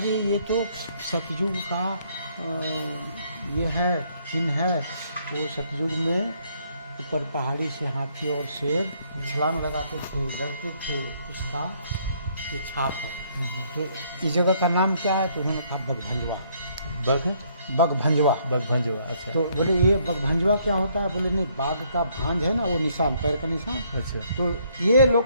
ये तो सतयुग का ये है, चिन्ह है। वो सतयुग में ऊपर पहाड़ी से हाथी और शेर छलांग लगाते थे, लड़ते थे, उसका ये छाप है। तो इस जगह का नाम क्या है? तो उन्होंने कहा बगभंजवा। बगभंजवा। अच्छा। तो बोले ये बगभंजवा क्या होता है? बोले नहीं, बाघ का भांज है ना, वो निशान, पैर का निशान। अच्छा। तो ये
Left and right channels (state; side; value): inverted; both; correlation -0.68